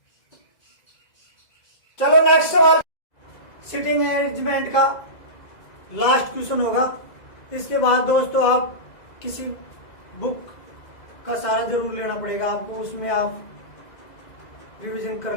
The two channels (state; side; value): late; right; 2.0 ms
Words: चलो नेक्स्ट सवाल, सिटिंग अरेंजमेंट का लास्ट क्वेश्चन होगा। इसके बाद दोस्तों आप किसी बुक का सहारा जरूर लेना पड़ेगा आपको, उसमें आप रिवीजन कर